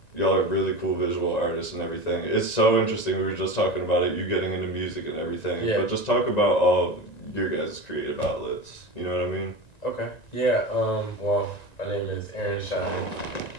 y'all are really cool visual artists and everything. It's so interesting. We were just talking about it. You getting into music and everything. Yeah. But just talk about all your guys' creative outlets. You know what I mean? Okay. Yeah. Well, my name is aaronshyne.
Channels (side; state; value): right; late; 1.9 ms